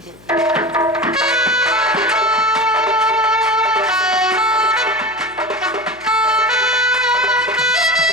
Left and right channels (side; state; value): left; noise; hum, 27 dB below the sound